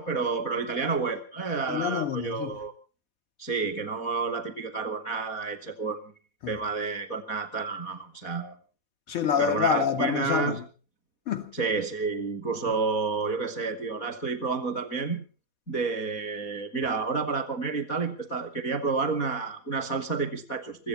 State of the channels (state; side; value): late; right; 4.2 ms